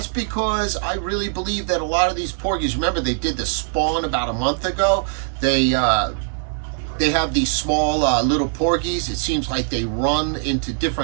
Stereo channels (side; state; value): left; silent; digital silence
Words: because I really believe that a lot of these porgies, remember they did the spawn about a month ago. They have these small little porgies. It seems like they run into